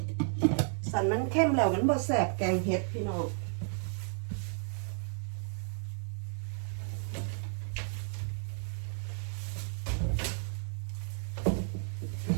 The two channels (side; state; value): left; silent; 56 dB below the other